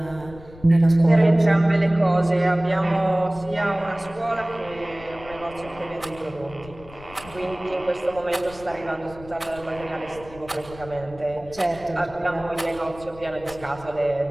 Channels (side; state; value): left; noise; rumble, 19 dB below the sound